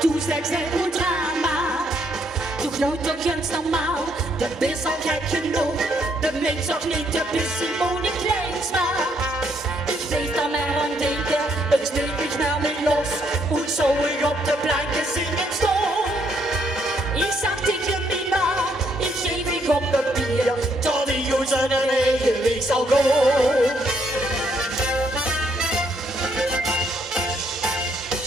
zijn een drama. Toch nou toch eens normaal, de is al gek genoeg. De mens ook niet, de is Simone Kleinsma. Ik weet dan maar aan denken, het sneeuwt mich naar me los. Und zo ik op de planken zingen stond. Ik zag tegen Mima, ik geef ik op papier, tot die jongens zijn eigen weg zal gaan.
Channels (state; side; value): normal; both; correlation 0.72